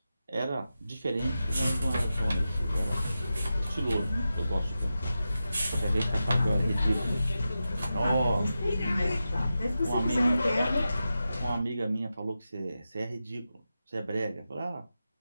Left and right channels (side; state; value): both; inverted; correlation -0.91